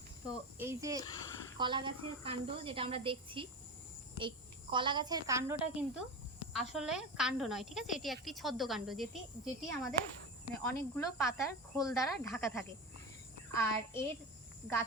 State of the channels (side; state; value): both; normal; correlation 0.24